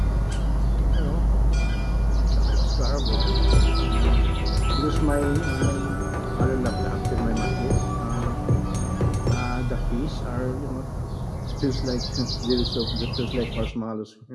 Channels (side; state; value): both; identical; correlation 1.00